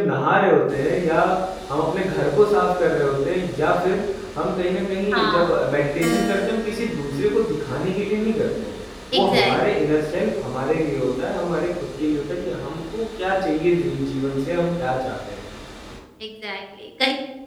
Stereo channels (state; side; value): identical; both; correlation 1.00